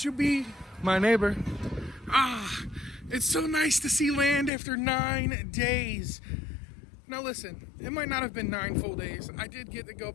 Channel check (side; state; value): right; drops out; at 4.5 s